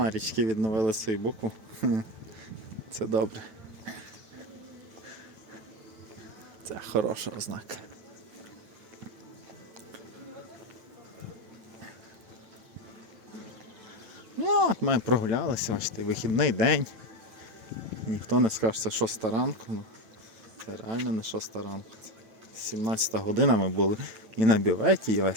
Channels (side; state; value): left; late; 9.1 ms